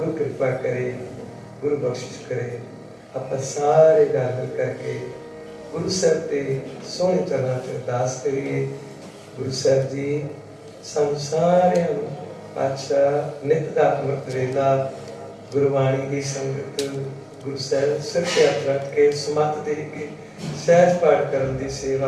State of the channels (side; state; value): both; identical; correlation 1.00